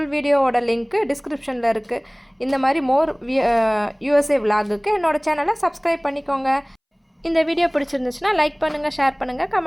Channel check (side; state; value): both; identical; correlation 1.00